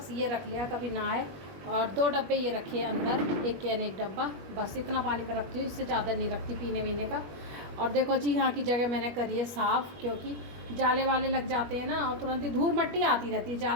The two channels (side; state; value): left; late; 21 ms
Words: ये रख लिया, कभी ना आए। और 2 डब्बे ये रखे हैं अंदर, एक कैन एक डब्बा, बस इतना पानी में रखती हूँ, इससे ज़्यादा नहीं रखती पीने वीने का। और देखो जी यहाँ की जगह मैंने करी है साफ़, क्योंकि जाले वाले लग जाते हैं ना और तुरंत ही धूल मट्टी आती रहती है।